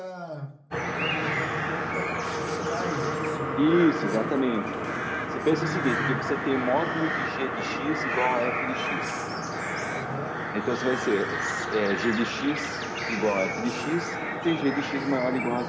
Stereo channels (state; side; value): identical; both; correlation 1.00